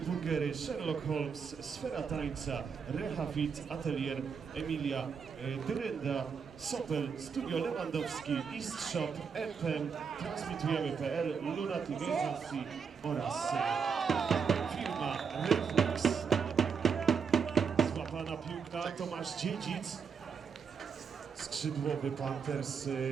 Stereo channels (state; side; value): quieter; left; 6.2 dB